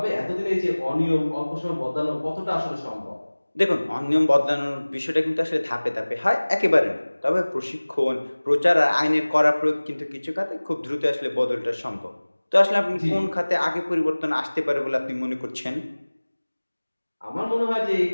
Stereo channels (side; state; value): both; inverted; correlation -1.00